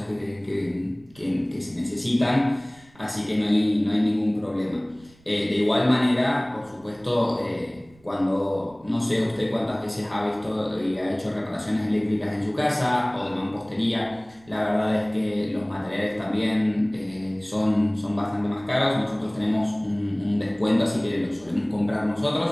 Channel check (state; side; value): noise; right; rumble, 28 dB below the sound